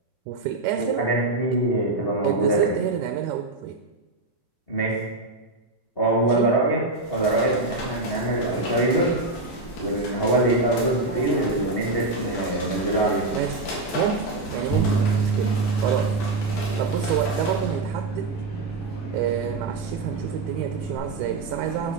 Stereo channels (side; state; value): left; quieter; 3.1 dB